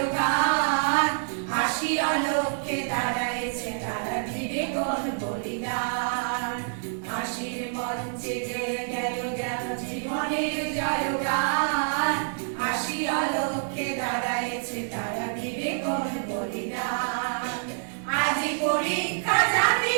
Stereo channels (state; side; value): silent; left; digital silence